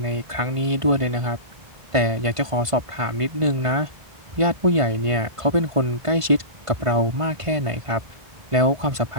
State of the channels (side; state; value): left; late; 1.5 ms